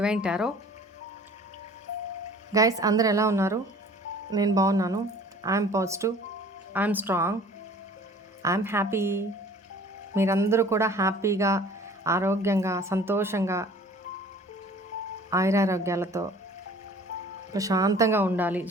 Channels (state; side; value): normal; both; correlation 0.48